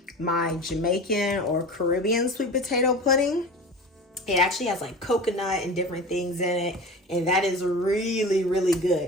my Jamaican or Caribbean sweet potato pudding. It actually has like coconut and different things in it, and that is really, really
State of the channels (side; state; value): both; normal; correlation 0.34